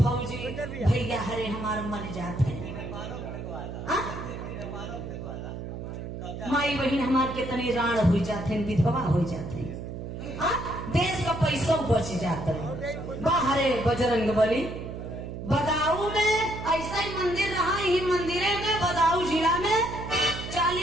भैया हरे हमारे मर जाते। माई बहन हमारे कितने राण हो जाते, विधवा हो जाते, देश का पैसा बच जाता है। बाहरे बजरंग बली बदाऊ में ऐसा ही मंदिर रहा, यही मंदिरे में बदाऊ जिला में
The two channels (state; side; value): noise; right; hum, 8 dB below the sound